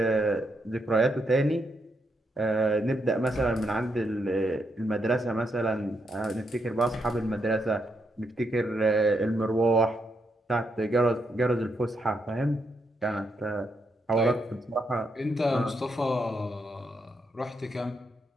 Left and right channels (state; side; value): normal; both; correlation 0.79